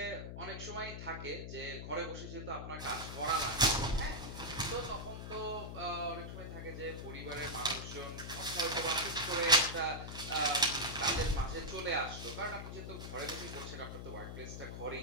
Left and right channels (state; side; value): noise; left; hum, 7 dB below the sound